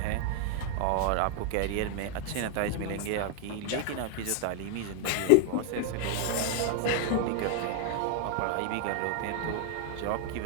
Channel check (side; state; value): both; different; correlation 0.00